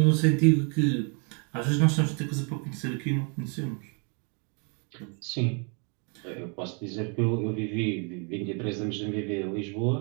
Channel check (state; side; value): quieter; left; 37.5 dB